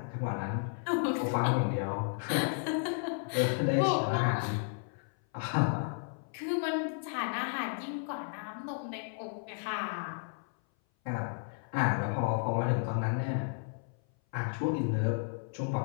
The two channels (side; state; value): right; silent; 56 dB below the other